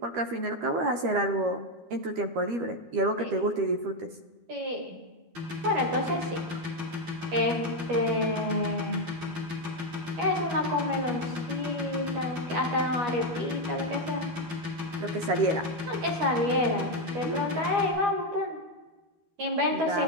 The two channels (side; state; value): left; late; 13 ms